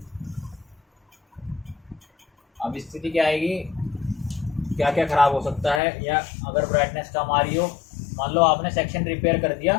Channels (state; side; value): drops out; right; at 5.8 s